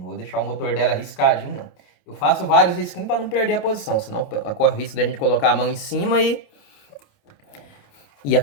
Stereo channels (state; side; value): late; right; 28 ms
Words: vou deixar o motor dela riscadinho, não. Eu faço vários risquinhos para não perder a posição, senão corre o risco da gente colocar a mão em cima e